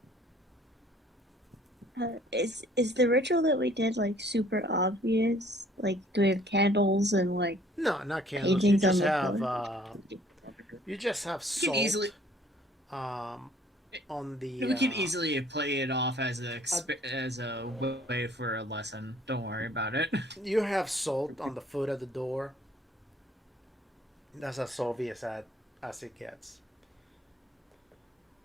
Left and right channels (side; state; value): both; normal; correlation 0.58